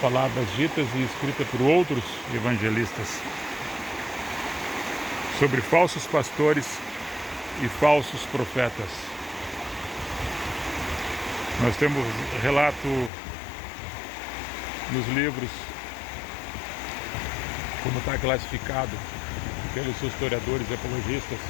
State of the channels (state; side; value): drops out; right; at 13.1 s